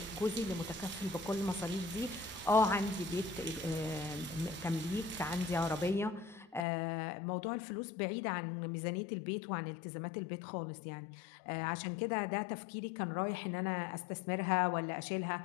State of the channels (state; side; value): drops out; right; at 6.7 s